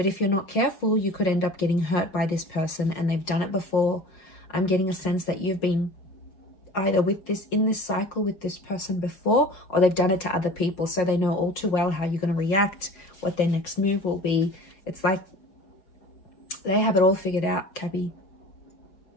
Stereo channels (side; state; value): right; late; 5.5 ms